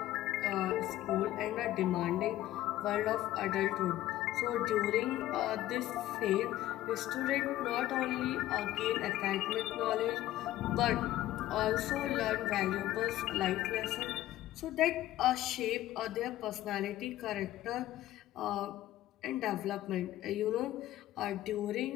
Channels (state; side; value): quieter; right; 14.5 dB